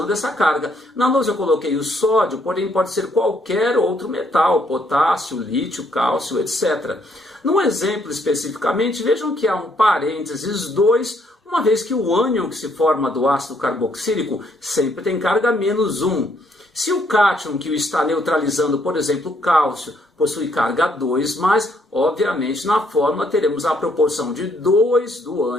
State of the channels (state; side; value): normal; both; correlation 0.70